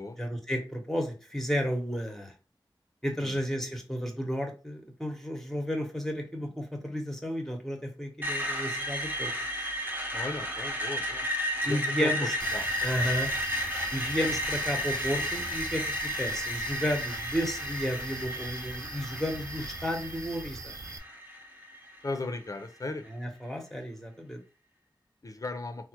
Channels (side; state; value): both; normal; correlation 0.59